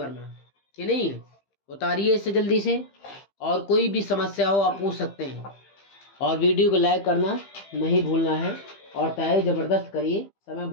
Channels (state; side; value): late; right; 15 ms